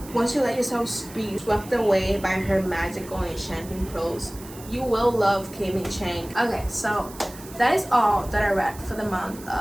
once you let yourself be swept away by her magical and enchanting prose, you will love K-ming Chang. Okay, so that is all that I read for the month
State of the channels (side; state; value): right; noise; hiss, 18 dB below the sound